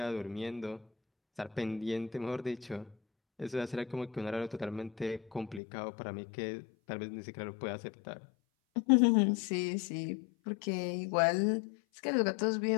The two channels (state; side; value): drops out; right; at 5.6 s